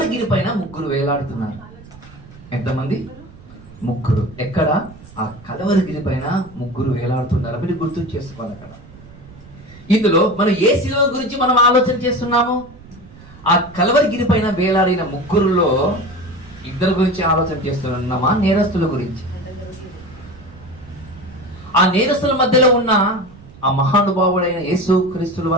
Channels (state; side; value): noise; right; rumble, 20 dB below the sound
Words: పైన ముగ్గురు వేలాడుతున్నారు. ఎంతమంది? ముగ్గురు. ఎక్కడ? ఆ కల్వరిగిరి పైన ముగ్గురు వేలాడుతున్నారు. మీరు గుర్తు చేసుకోవాలి. అక్కడ ఇందులో మనం ఏ సిలువ గురించి మనం ఆలోచన చేస్తున్నాము? ఆ కల్వరిగిరి పైన వేలాడిన ముగ్గురులో ఇద్దరు గురించి ఆలోచన చేస్తున్నామా, నేరస్తుల గురించి? ఆ నేరస్తుల మధ్యలో ఉన్న ఆ మహానుభావుడైన యేసుక్రీస్తు